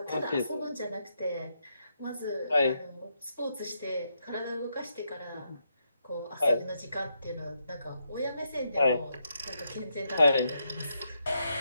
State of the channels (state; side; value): inverted; both; correlation -0.80